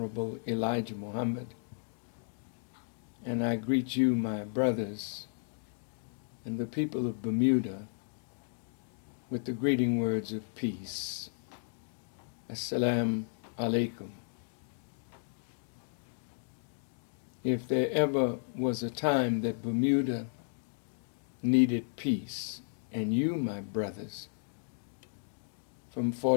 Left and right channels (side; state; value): right; silent; digital silence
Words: Elijah Muhammad. And I greet you, my brothers, and the people of Bermuda with the greeting words of peace. Assalamu alaikum. If there ever was a time that Bermuda needed peace, and you, my brothers, from